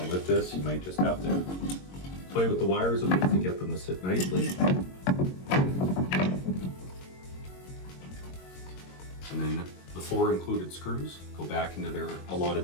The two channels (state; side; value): late; right; 22 ms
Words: with this, you might just have to play with the wires a bit to get them to sit nicely. And then the 4 included screws go back into their